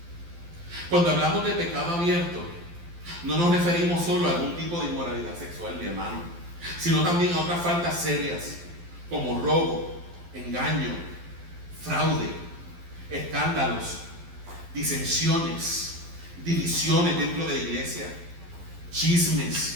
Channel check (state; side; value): late; left; 12 ms